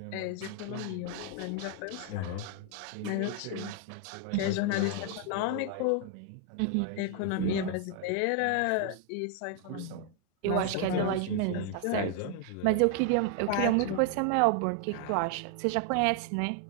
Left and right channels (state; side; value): different; both; correlation 0.00